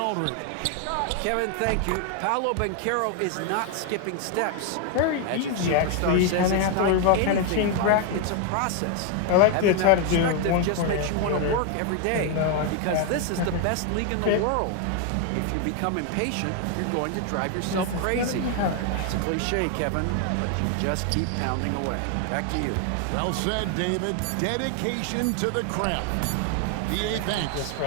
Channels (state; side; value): different; both; correlation 0.01